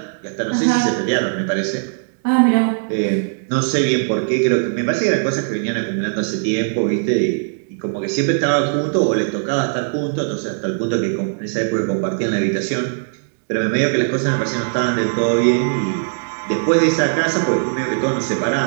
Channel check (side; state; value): left; silent; digital silence